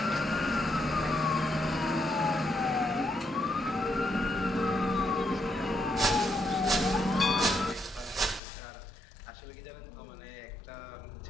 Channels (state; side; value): drops out; right; at 8.4 s